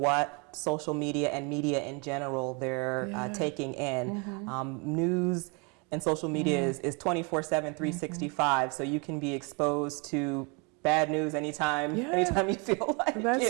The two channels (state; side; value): quieter; left; 32.2 dB